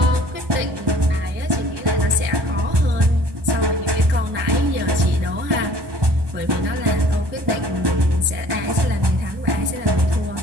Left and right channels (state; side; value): late; left; 1.2 ms